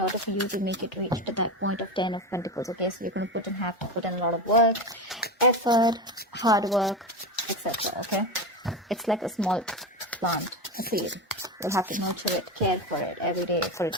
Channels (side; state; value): both; normal; correlation 0.20